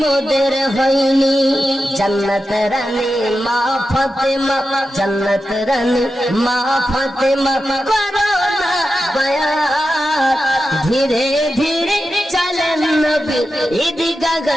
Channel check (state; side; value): normal; both; correlation 0.91